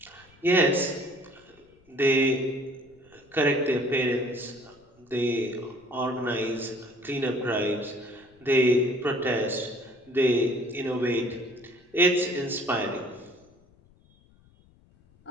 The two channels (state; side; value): noise; left; rumble, 30 dB below the sound